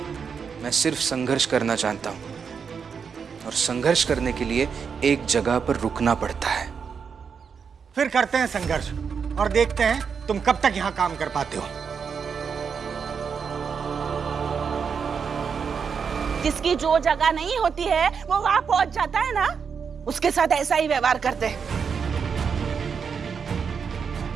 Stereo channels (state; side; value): quieter; left; 6.3 dB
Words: मैं सिर्फ संघर्ष करना चाहता हूं, और संघर्ष करने के लिए एक जगह पर रुकना पड़ता है। फिर करते हैं संघर्ष और देखते हैं तुम कब तक यहां काम कर पाते हो। जिसकी जो जगह नहीं होती है वो वहां पहुंच जाता है ना, उसके साथ ऐसा ही व्यवहार करते हैं।